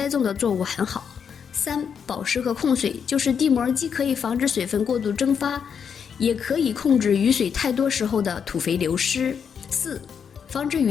种的作物很好。3. 保湿和控水，就是地膜既可以防止水分过度蒸发，也可以控制雨水太多时候的土肥流失。4. 防止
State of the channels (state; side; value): quieter; right; 7.1 dB